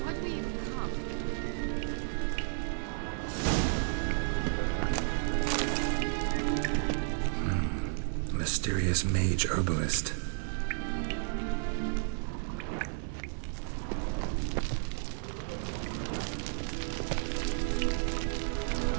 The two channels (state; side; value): silent; left; 56 dB below the other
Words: do we even come? Mysterious mage herbalist.